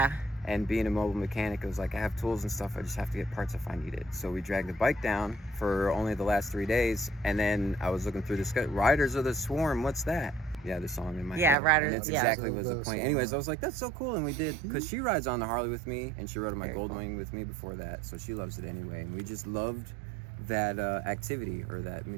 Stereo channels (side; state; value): left; drops out; at 11.6 s